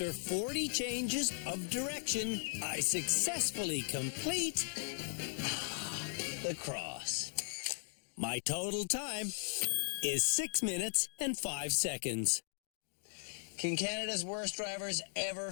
40 changes of direction, I successfully complete The Cross. my total time is 6 minutes and 5 seconds. Can Canada's worst drivers ever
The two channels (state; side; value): silent; right; digital silence